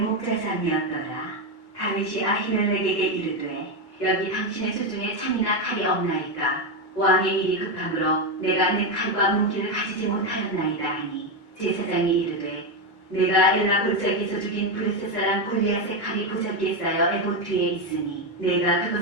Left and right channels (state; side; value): late; right; 2.2 ms